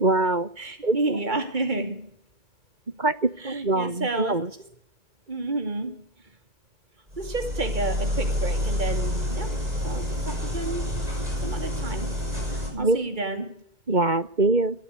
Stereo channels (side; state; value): left; late; 2.3 ms